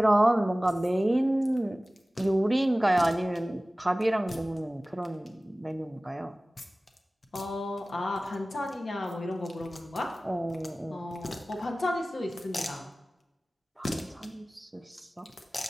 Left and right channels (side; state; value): both; normal; correlation 0.97